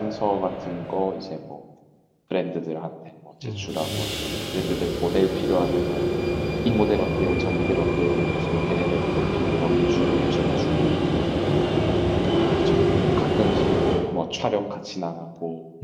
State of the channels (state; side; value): identical; both; correlation 1.00